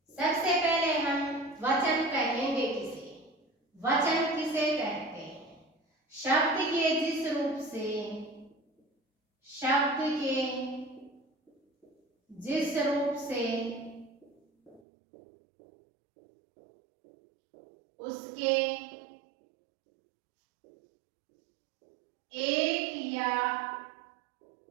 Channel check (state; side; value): drops out; left; at 14.8 s